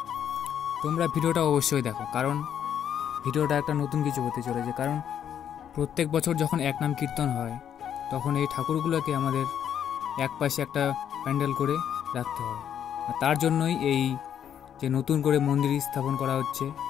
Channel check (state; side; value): quieter; right; 9.3 dB